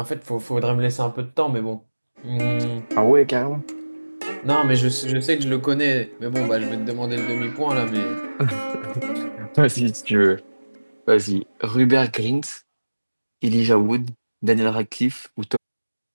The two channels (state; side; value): inverted; both; correlation -1.00